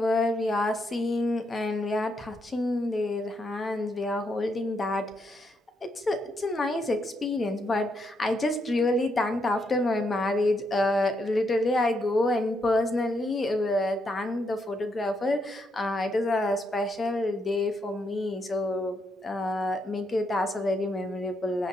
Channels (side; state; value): both; normal; correlation 0.78